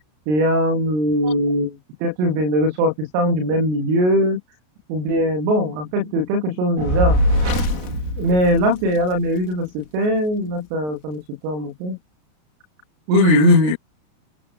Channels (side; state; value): left; late; 33 ms